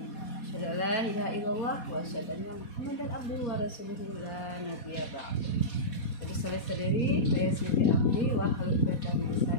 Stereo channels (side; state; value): right; late; 4.2 ms